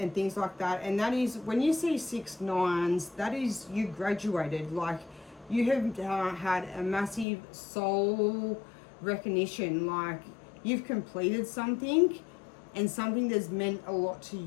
things like that. And that is, when you see 6 9s, that is, you graduated. Like, you have had a massive soul recognition. Like, you've completed something, and something that's meant a lot to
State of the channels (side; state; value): right; drops out; at 7.2 s